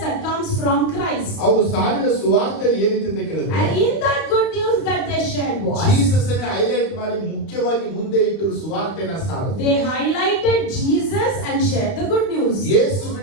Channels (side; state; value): right; late; 31 ms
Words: that comes from Christ. ಅವರು ಸಾರಿದ ಸುವಾರ್ತೆ ಏನಿತ್ತು ಅಂತ ಕೇಳಿದ್ರೆ And in that good news that they shared was, Jesus ಅನ್ನು ಹೈಲೈಟ್ ಮಾಡಿ ಮುಖ್ಯವಾಗಿ ಮುಂದೆ ಇಟ್ಟರು ಸುವಾರ್ತೆನ ಸಾರಿದ್ರು. they highlighted Jesus and shared the good news. ಯೇಸು